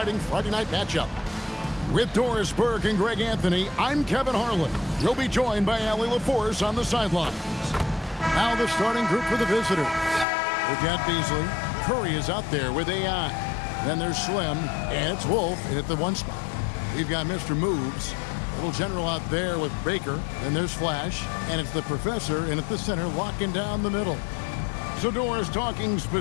Friday night matchup. With Doris Burke and Greg Anthony, I'm Kevin Harlan. You'll be joined by Allie LaForce on the sidelines. Now the starting group for the visitors. We've got Beasley. Curry is out there with AI. Then there's Slim, and it's Wolf in at the one spot. We've got Mr. Moves. Little general out there with Baker. Then there's Flash, and it's the professor in at the center locking down the middle. So Doris, talking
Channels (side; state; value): right; drops out; at 10.2 s